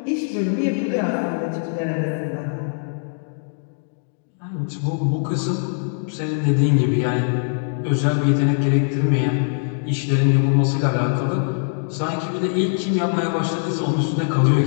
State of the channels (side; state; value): right; silent; digital silence